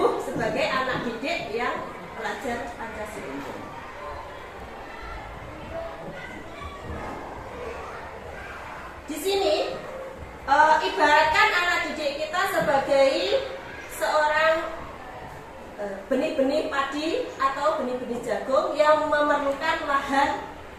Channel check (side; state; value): both; identical; correlation 1.00